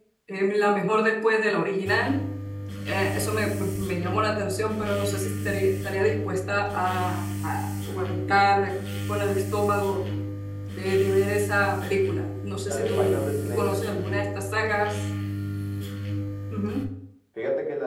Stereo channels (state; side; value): identical; both; correlation 1.00